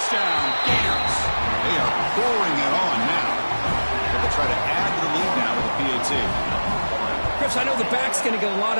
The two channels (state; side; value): inverted; both; correlation -1.00